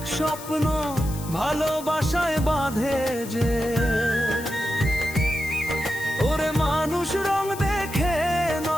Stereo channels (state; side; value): noise; left; hiss, 14 dB below the sound